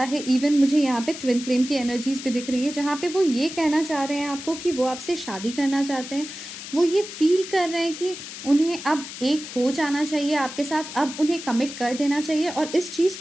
है। इवन मुझे यहाँ पे ट्विन फ्लेम की एनर्जीज भी दिख रही है, जहाँ पे वो ये कहना चाह रहे हैं आपको कि वो आपसे शादी करना चाहते हैं। वो ये फील कर रहे हैं कि उन्हें अब एक हो जाना चाहिए आपके साथ, अब उन्हें कमिट कर देना चाहिए। और इस चीज़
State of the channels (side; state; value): left; noise; hiss, 11 dB below the sound